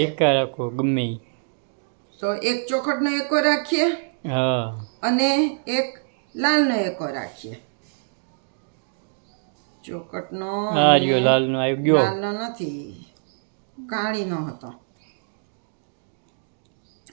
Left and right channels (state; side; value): silent; left; digital silence